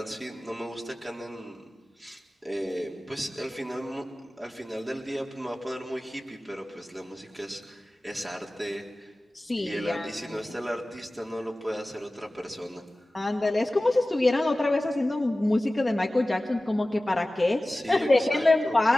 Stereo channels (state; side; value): normal; both; correlation 0.97